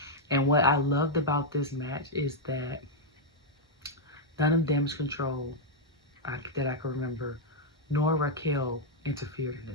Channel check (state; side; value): normal; both; correlation -0.04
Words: And what I loved about this match is that none of Damage Control that I can remember, nor Raquel interfered in